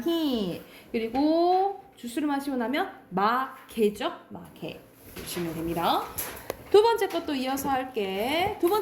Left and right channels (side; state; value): both; identical; correlation 1.00